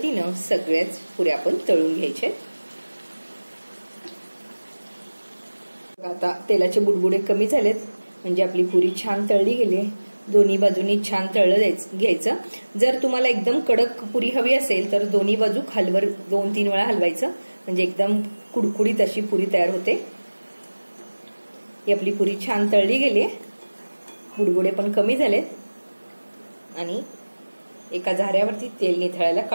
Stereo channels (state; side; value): inverted; both; correlation -1.00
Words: सगळ्याच पुऱ्या आपण तळून घ्यायचे. आता तेलाचे बुडबुडे कमी झालेत म्हणजे आपली पुरी छान तळली गेली. दोन्ही बाजूनी छान तळलं घ्यायचं. जर तुम्हाला एकदम कडक पुरी हवी असेल तर दोन्ही बाजू खालवर 2-3 वेळा हलवायचं म्हणजे एकदम कुडकुडीत अशी पुरी तयार होते. ही आपली पुरी छान तळली गेली. बुडबुडे पण कमी झालेत आणि एका झाऱ्यावरती तेल निथळायला